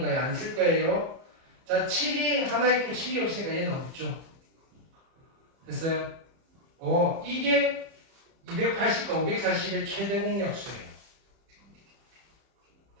거예요. 안 쓸 거예요. 자, 7이 하나 있고 7이 없으니까 얘는 없죠. 됐어요? 이게 280과 540의 최대 공약수예요.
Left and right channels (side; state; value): left; late; 30 ms